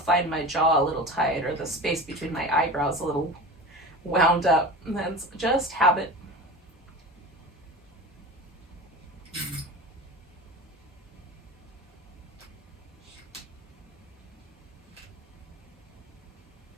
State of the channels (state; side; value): normal; both; correlation 0.32